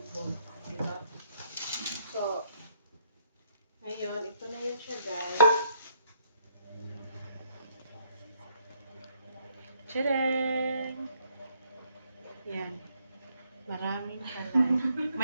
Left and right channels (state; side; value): inverted; both; correlation -0.71